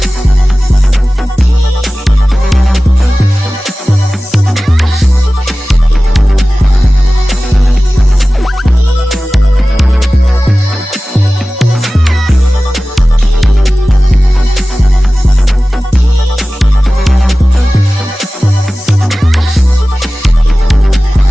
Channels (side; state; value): both; normal; correlation 0.97